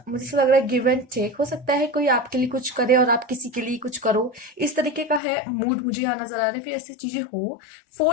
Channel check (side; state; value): right; drops out; at 5.2 s